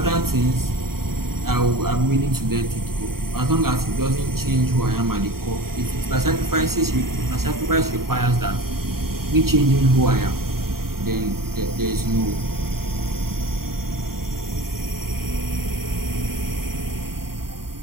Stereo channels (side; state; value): left; late; 0.93 ms